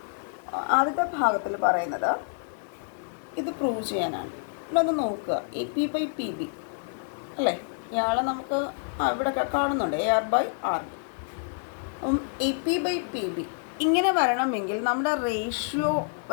ആദ്യത്തെ ഭാഗത്തിൽ പറയുന്നത് ഇത് പ്രൂവ് ചെയ്യാനാണ്. ഇവിടെ ഒന്ന് നോക്കുക, AP/PB അല്ലേ, ഇയാളെ നമുക്ക് ഇവിടെ കാണുന്നുണ്ട് AR/RB. അപ്പം AP/PB ഇങ്ങനെ വരണമെങ്കിൽ നമ്മുടെ റേഷ്യോ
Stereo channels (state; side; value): silent; right; digital silence